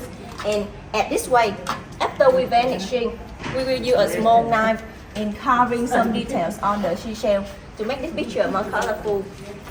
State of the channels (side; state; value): both; identical; correlation 1.00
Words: And at this way, after we vanishing, we will use a small knife in carving some details on the seashell to make this picture more colorful.